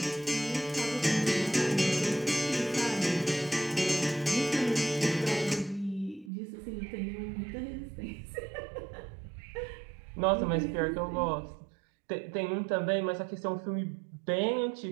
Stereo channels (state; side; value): drops out; left; at 6.3 s